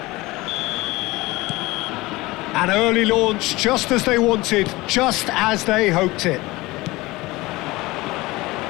An early launch, just as they wanted, just as they hoped it.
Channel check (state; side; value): quieter; right; 20.8 dB